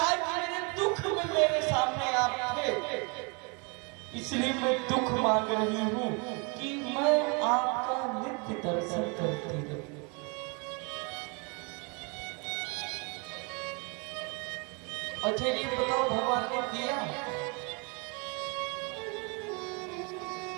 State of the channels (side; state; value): left; quieter; 32.5 dB